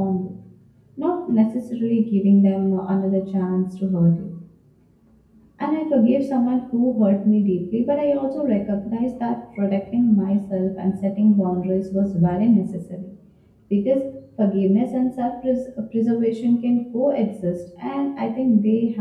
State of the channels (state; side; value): identical; both; correlation 1.00